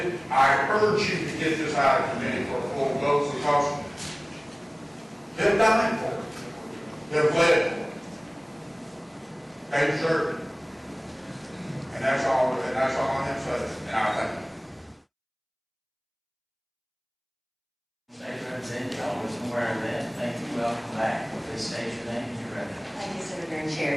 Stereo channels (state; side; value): identical; both; correlation 1.00